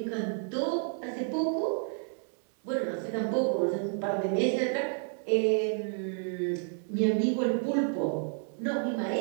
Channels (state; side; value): silent; left; 57 dB below the other